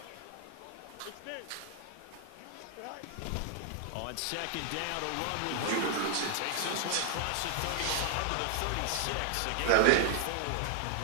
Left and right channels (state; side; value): different; both; correlation 0.00